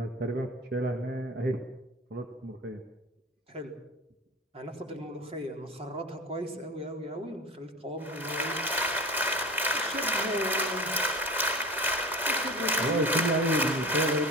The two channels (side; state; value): both; normal; correlation 0.33